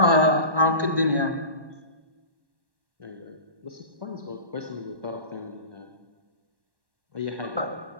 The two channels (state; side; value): late; left; 1.1 ms